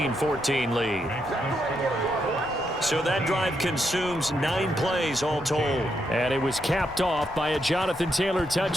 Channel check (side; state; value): left; noise; rumble, 20 dB below the sound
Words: lead. So that drive consumes 9 plays all told. And it was capped off by a Jonathan Taylor